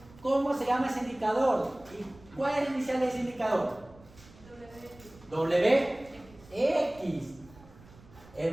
cómo se llama ese indicador. ¿Y cuál es el inicial de ese indicador? WX,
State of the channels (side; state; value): right; noise; rumble, 23 dB below the sound